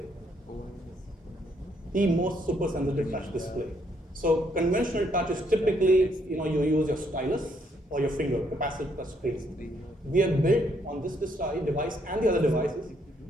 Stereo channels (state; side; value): normal; both; correlation 0.71